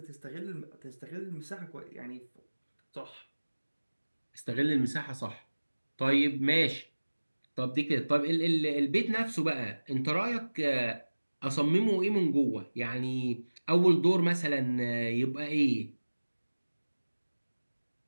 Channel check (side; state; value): both; inverted; correlation -1.00